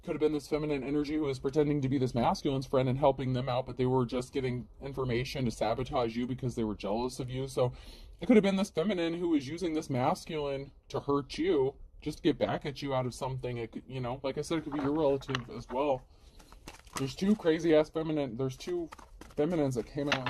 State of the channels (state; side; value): identical; both; correlation 1.00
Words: could have been this feminine energy who was pretending to be this masculine's friend and helping them out, but they were just getting information to sabotage you because they were jealous of you. So it could have been this feminine who was using this masculine to hurt you, just to get back at you out of something. It could, like I said, it could be your relative as well. There's two crazy ass feminine. There's two feminines that came out